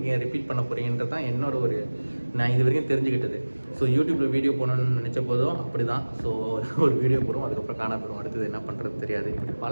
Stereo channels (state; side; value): inverted; both; correlation -1.00